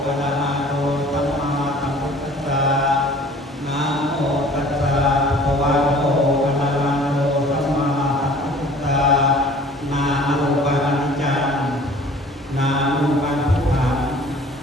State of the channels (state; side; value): normal; both; correlation 0.50